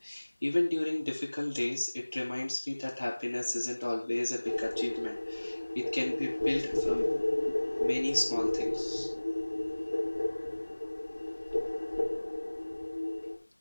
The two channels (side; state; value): both; inverted; correlation -1.00